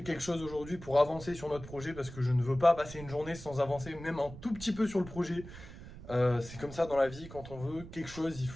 quelque chose aujourd'hui pour avancer sur notre projet parce que je ne veux pas passer une journée sans avancer même un tout petit peu sur le projet. C'est comme ça dans la vie, quand on veut quelque chose, il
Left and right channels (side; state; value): right; noise; rumble, 14 dB below the sound